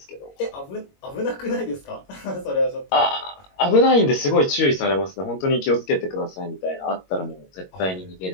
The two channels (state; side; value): late; right; 22 ms